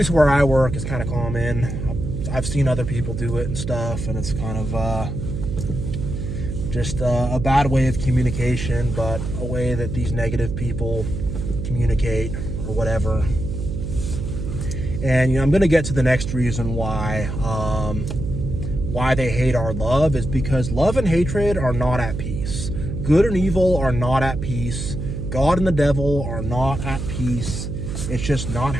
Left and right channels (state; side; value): noise; right; hum, 5 dB below the sound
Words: where I work, is kind of common. I've seen other people do it and stuff, and it's kind of just a bad way of communication, but a way that these negative people communicate or whatever. And I'm going to get to the next reason why they hate our love, is because love and hatred are not at peace. Good and evil are not at peace. God and the devil are not at peace. It's just not